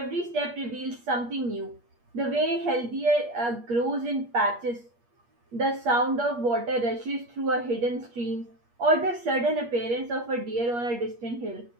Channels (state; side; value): late; left; 8.5 ms